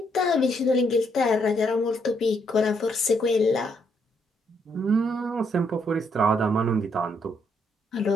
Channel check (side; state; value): both; normal; correlation 0.73